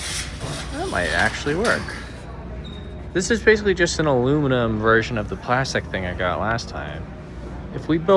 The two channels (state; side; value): identical; both; correlation 1.00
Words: That might actually work. This is basically just an aluminum version of the plastic thing I got last time. If we